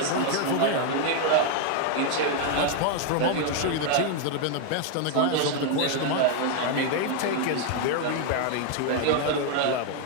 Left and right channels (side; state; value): both; different; correlation 0.00